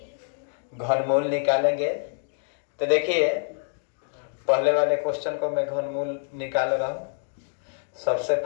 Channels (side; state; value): right; silent; digital silence